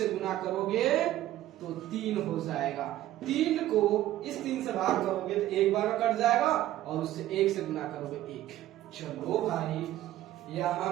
गुना करोगे तो 3 हो जाएगा। 3 को इस 3 से भाग करोगे तो 1 बार में कट जाएगा और उससे 1 से गुना करोगे 1। चलो भाई, यहां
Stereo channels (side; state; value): left; quieter; 14.1 dB